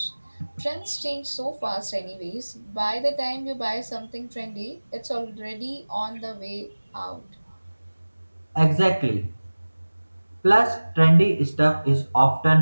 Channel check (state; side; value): inverted; both; correlation -1.00